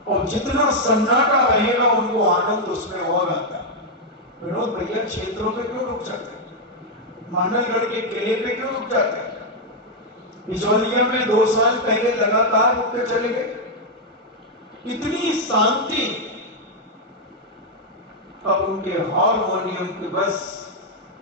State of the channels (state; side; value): normal; both; correlation -0.01